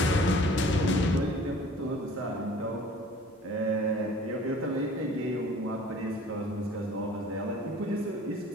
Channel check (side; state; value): both; normal; correlation 0.49